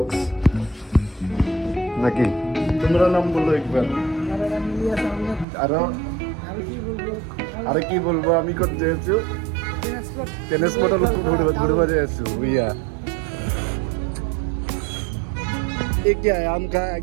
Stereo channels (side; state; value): left; drops out; at 5.5 s